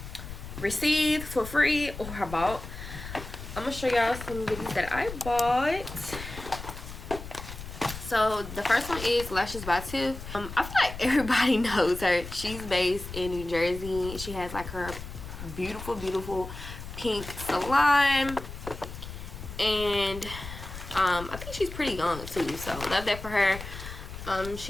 received for free or I bought. I'm gonna show y'all some goodies that I bought. So the first one is Lashes by Tiff. I feel like everybody knows her. She's based in New Jersey. She has like her beautiful pink salon, and I think she's pretty young too, so love that for her.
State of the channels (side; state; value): left; noise; rumble, 11 dB below the sound